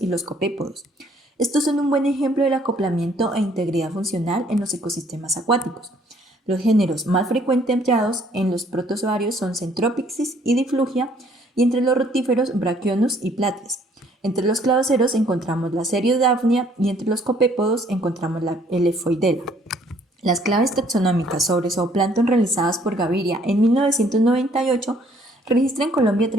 los copépodos. Estos son un buen ejemplo del acoplamiento e integridad funcional en los ecosistemas acuáticos. Los géneros más frecuentemente hallados en los protozoarios son Centropyxis y Diflugia, y entre los rotíferos Brachionus y Platies. Entre los cladoceros encontramos la Seriodaphnea y entre los copépodos encontramos la Lephoidea. Las claves taxonómicas sobre zooplancton realizadas por Gaviria en 1998 registran en Colombia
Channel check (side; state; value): both; normal; correlation 0.62